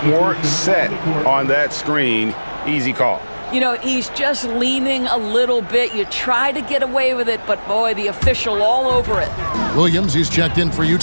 weren't set on that screen. Easy call. You know, he's just leaning a little bit. You try to get away with it, but boy, the official all over it. Williams, he's checked in for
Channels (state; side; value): inverted; both; correlation -1.00